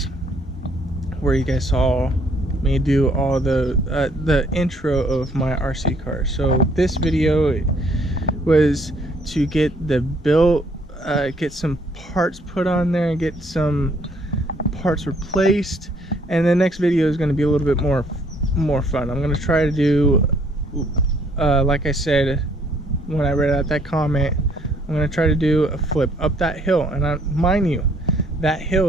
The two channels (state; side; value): normal; both; correlation 0.64